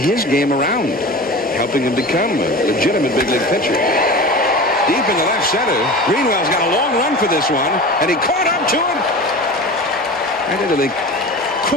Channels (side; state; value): both; normal; correlation 0.33